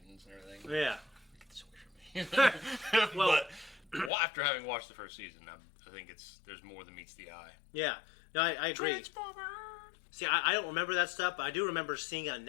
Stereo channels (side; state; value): right; drops out; at 4.1 s